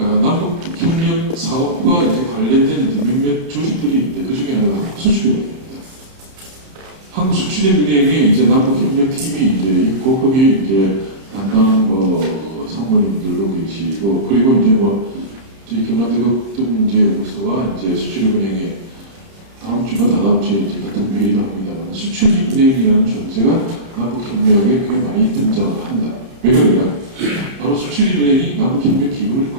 남북협력 사업과 이제 관련된 이제 몇몇 조직들이 있는데 그 중에 하나가 한국수출입니다. 한국수출입은행에 이제 남북협력팀이 이제 있고 거기 이제 담당 뭐 상무님들도 계시고 그리고 이제 뭐 저희 경남대국등문제연구소와 이제 수출입은행에 다음 주나 다다음 주에 이제 같은 회의를 합니다만 수출입은행이라는 존재가 남북협력에 꽤 많이 등장을 한다. 왜 그러냐? 바로 수출입은행이 남북협력 기금을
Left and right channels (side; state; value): left; late; 30 ms